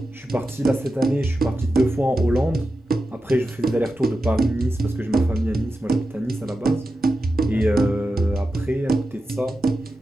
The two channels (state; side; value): normal; both; correlation 0.91